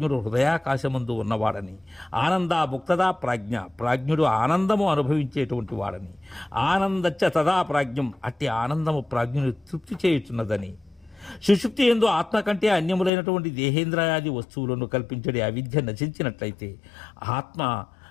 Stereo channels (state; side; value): drops out; right; at 13.1 s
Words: హృదయాకాశమందు ఉన్నవాడని, ఆనంద ముక్తదా ప్రాజ్ఞ ప్రాజ్ఞుడు ఆనందము అనుభవించేటువంటి వాడని, ఆనందచ్చ తదా ప్రాజ్ఞం అట్టి ఆనందము ప్రాజ్ఞుని తృప్తి చేయుచున్నదని, సుషుప్తి యందు ఆత్మ కంటే అన్యములైనటువంటి దేహేంద్రయాది వస్తువులను కల్పించడే అవిద్య నశించినట్లయితే ఆత్మ